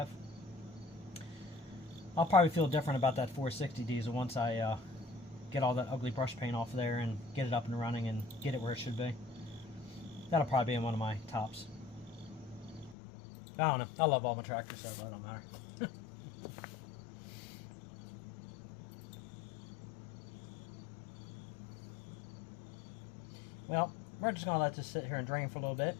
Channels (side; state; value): right; drops out; at 13.0 s